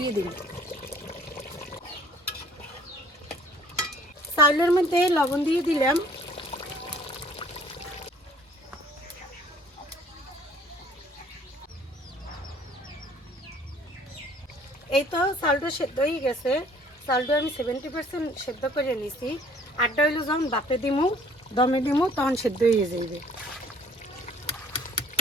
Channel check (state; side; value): normal; both; correlation 0.57